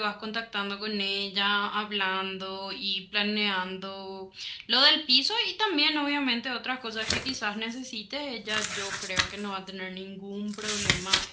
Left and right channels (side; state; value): both; identical; correlation 1.00